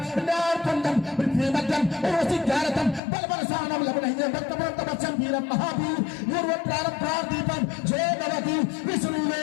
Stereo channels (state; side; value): drops out; right; at 3.0 s